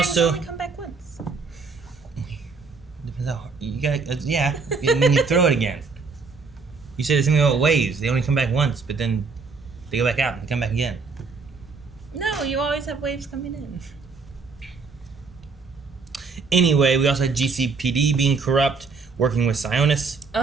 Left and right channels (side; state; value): left; quieter; 4.5 dB